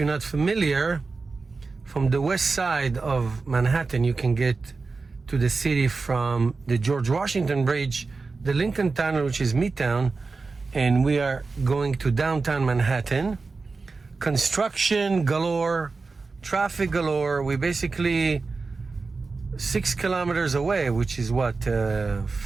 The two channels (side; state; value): left; quieter; 4.1 dB